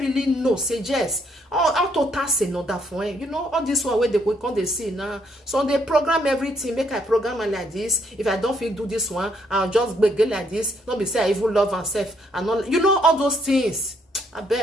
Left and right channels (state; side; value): normal; both; correlation 0.70